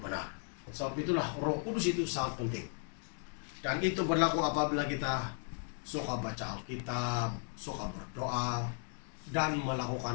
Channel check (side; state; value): right; silent; 54 dB below the other